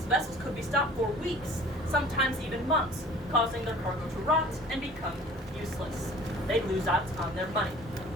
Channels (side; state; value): both; normal; correlation 0.48